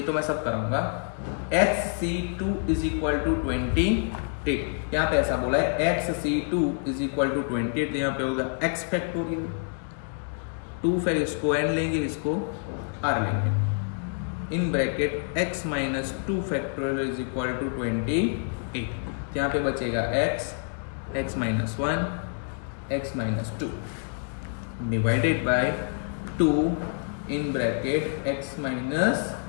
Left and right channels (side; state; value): right; silent; 60 dB below the other